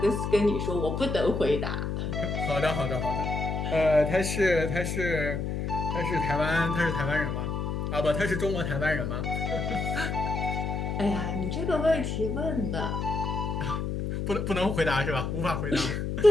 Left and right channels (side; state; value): left; noise; hum, 2 dB below the sound